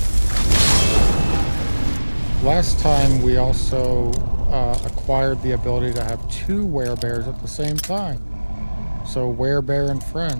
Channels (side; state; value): both; inverted; correlation -1.00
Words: Last time we also acquired the ability to have two werebears at the same time. So werebear and